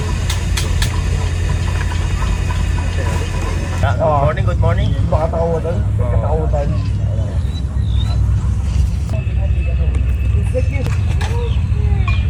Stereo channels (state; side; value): identical; both; correlation 1.00